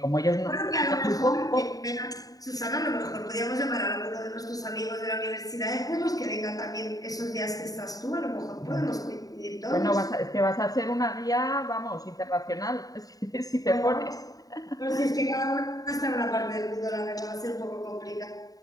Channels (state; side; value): late; right; 0.18 ms